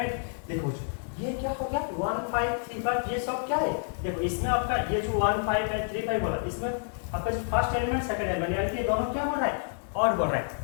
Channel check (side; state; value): right; silent; digital silence